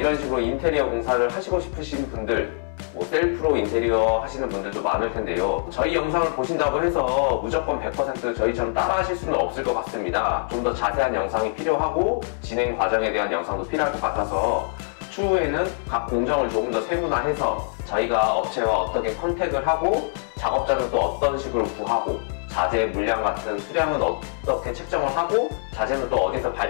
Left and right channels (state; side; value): silent; right; 60 dB below the other